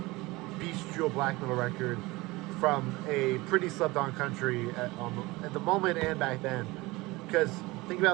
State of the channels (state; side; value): quieter; left; 21.7 dB